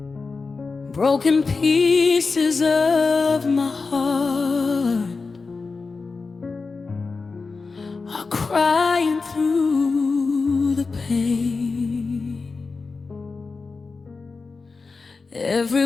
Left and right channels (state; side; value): quieter; right; 4.3 dB